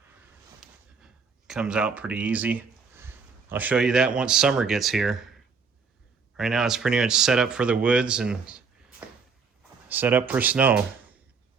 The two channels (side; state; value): left; quieter; 5.3 dB